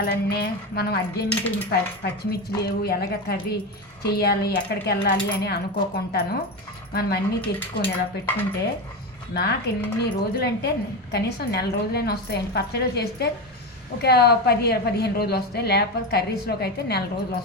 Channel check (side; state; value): both; normal; correlation 0.18